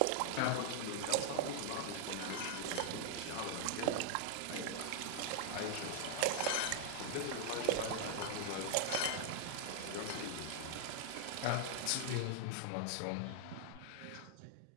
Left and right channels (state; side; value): different; both; correlation 0.00